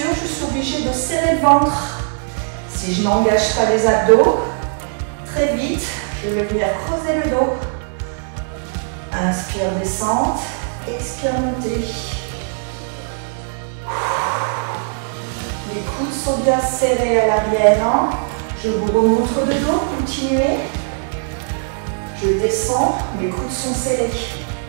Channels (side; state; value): left; silent; 66 dB below the other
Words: je suis obligée de serrer le ventre. Si je n'engage pas les abdos, très vite, je vais venir creuser le dos. Inspire, descente, expire, montée. Les coudes sont bien serrés à l'arrière. Je vous remontre le dos, continuez. Je descends, mes coudes sont serrés.